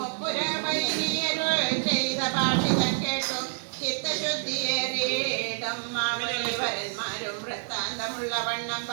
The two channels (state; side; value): silent; left; digital silence